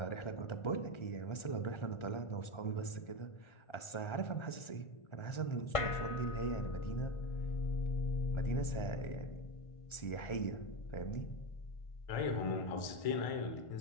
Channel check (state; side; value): late; right; 1.5 ms